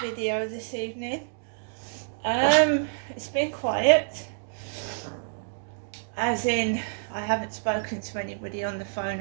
video this evening. It's been quiet, as in I haven't spoken to anybody on the phone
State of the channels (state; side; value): silent; left; digital silence